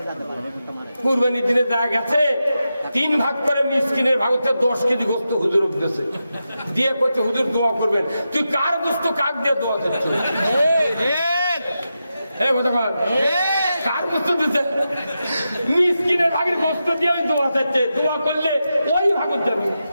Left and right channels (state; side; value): inverted; both; correlation -0.89